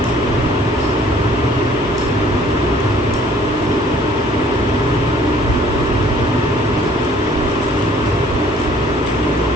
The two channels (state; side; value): normal; both; correlation 0.57